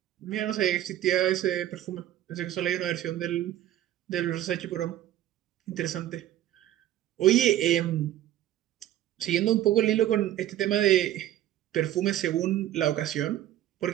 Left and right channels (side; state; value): left; quieter; 12.9 dB